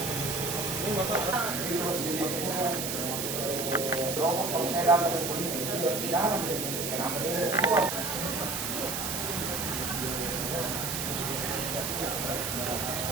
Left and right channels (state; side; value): noise; right; hiss, 2 dB below the sound